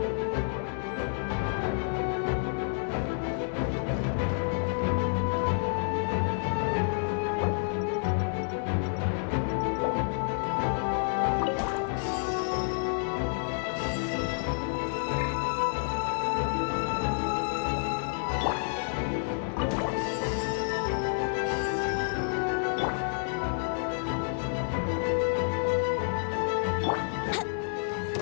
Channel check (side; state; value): right; silent; digital silence